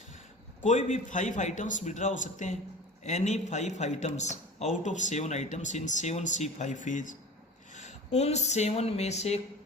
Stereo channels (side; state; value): both; normal; correlation 0.38